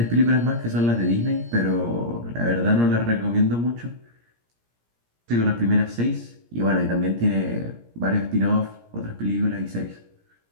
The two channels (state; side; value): late; left; 17 ms